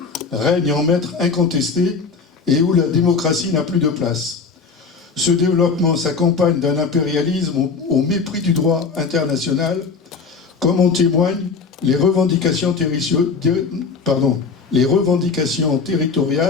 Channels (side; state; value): right; quieter; 4.9 dB